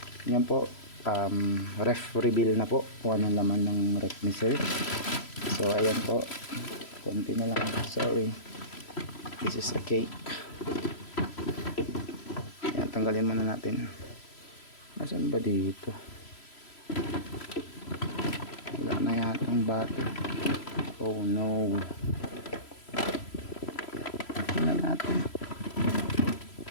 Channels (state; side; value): late; right; 3.0 ms